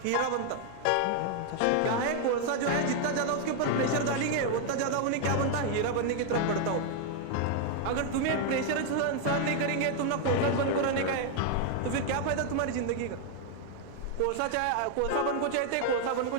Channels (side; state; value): both; different; correlation 0.00